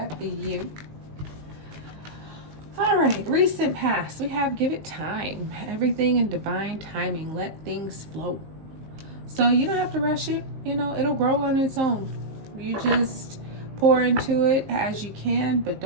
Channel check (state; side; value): late; left; 19 ms